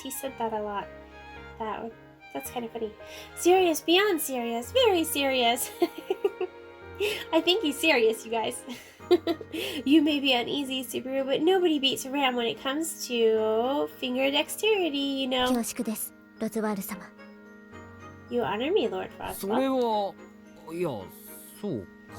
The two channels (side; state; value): both; identical; correlation 1.00